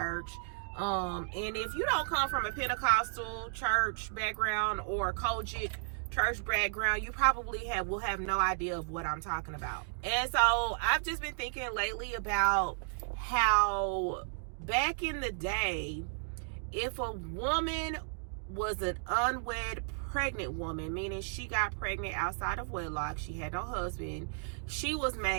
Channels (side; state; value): left; silent; digital silence